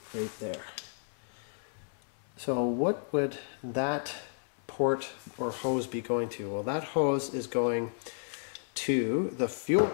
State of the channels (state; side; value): silent; right; 56 dB below the other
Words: there. So what would that port or hose be going to? Well, that hose is going to the fuel